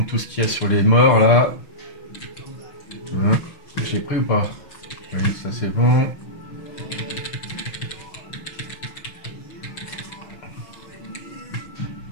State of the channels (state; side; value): late; right; 6.3 ms